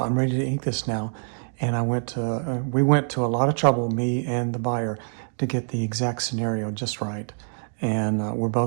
ready to ink this now. And we went to a lot of trouble, me and the buyer, to get the exact scenario just right. And we're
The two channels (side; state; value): left; silent; digital silence